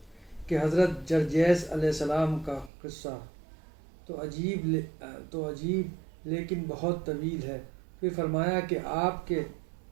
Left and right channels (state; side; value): drops out; left; at 2.7 s